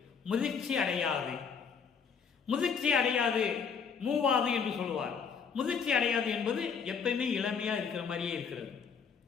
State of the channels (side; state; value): right; quieter; 6.3 dB